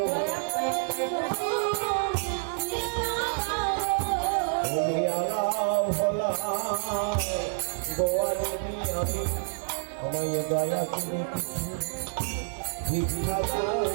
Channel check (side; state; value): left; silent; 59 dB below the other